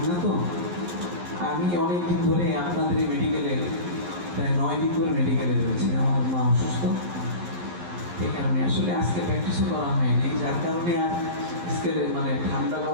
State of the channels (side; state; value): left; late; 11 ms